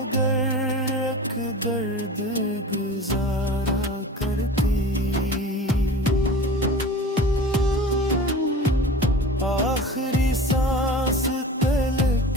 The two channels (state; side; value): normal; both; correlation 0.37